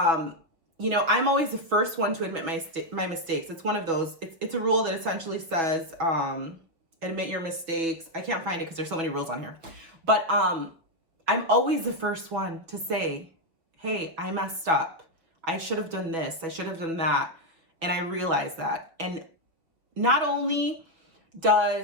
you know, I'm always the first one to admit my mistakes. It's one of those. It's a rule that essentially says, admit your mistakes. I can't find it because there's so many rules on here. But I'm always the first one to say, hey, I messed up. I should have done this. I should have done that. And I realize that. And not only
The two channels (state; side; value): late; left; 6.1 ms